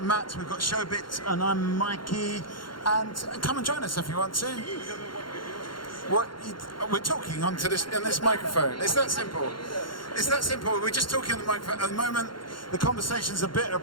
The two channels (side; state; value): right; late; 0.72 ms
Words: Matt, we've got Showbit, and I'm Mikey. And come and join us if you want to. We're talking onto this microphone. It's that simple. It's that simple. We're just talking on the microphone. At the moment, the conversation's a bit